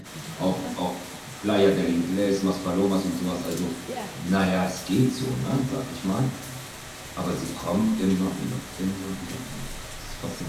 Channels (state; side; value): identical; both; correlation 1.00